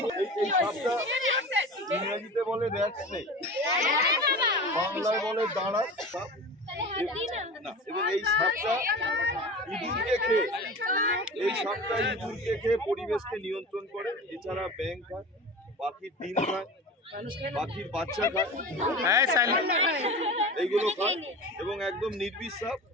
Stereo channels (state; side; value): normal; both; correlation 0.33